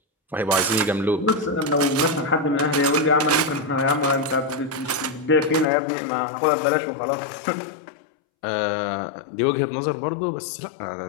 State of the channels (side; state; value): right; drops out; at 5.7 s